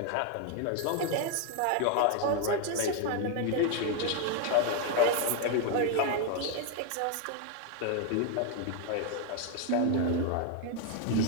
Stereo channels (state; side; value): different; both; correlation 0.01